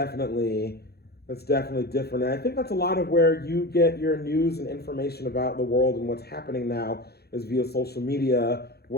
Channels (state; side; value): late; right; 0.46 ms